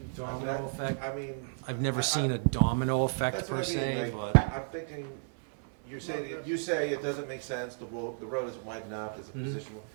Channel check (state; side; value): silent; left; digital silence